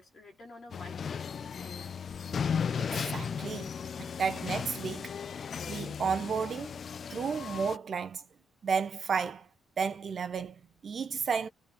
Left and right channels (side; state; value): both; normal; correlation 0.79